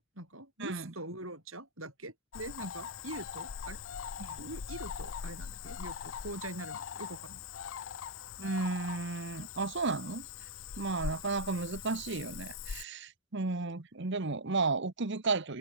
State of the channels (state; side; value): normal; both; correlation -0.06